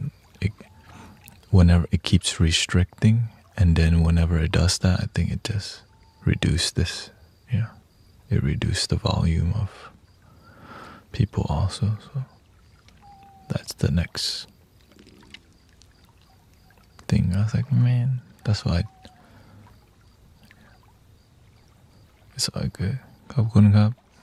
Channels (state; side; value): identical; both; correlation 1.00